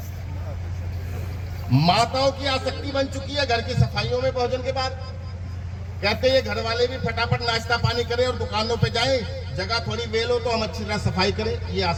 माताओं की आसक्ति बन चुकी है घर की सफाइयों में भोजन के बाद, कहते हैं घर वाले भी फटाफट नाश्ता पानी करें और दुकानों पे जाएं, जगह थोड़ी वेल हो तो हम अच्छी तरह सफाई करें। ये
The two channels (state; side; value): identical; both; correlation 1.00